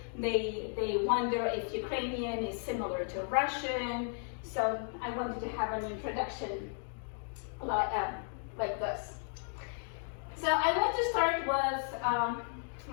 they wonder if Ukrainian is similar to Russian. So I wanted to have an introduction like this. So I want to start with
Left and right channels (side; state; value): right; silent; 55 dB below the other